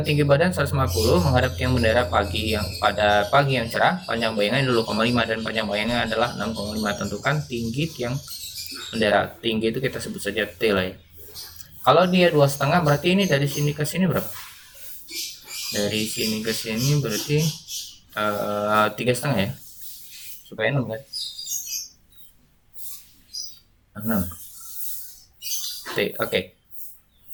tinggi badan 150 menghadap tiang bendera pada pagi yang cerah. Panjang bayangannya 2,5 dan panjang bayangannya adalah 6,5. Tentukan tinggi tiang bendera. Tinggi itu kita sebut saja T lah ya. Kalau dia 2,5 berarti ini dari sini ke sini berapa? Dari sini ke sini berarti 3,5 ya, supaya 6 kan? 6 T. Oke.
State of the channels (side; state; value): both; identical; correlation 1.00